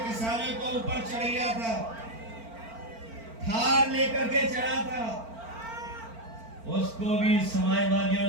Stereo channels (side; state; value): left; late; 4.4 ms